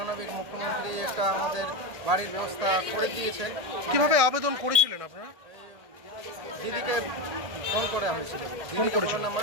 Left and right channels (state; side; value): late; left; 1.6 ms